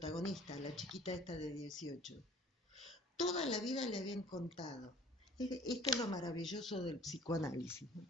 a la chiquita esta de 18, toda la vida le habían contado. Esto es lo maravilloso del psicoanálisis, ¿no?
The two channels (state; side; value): normal; both; correlation 0.51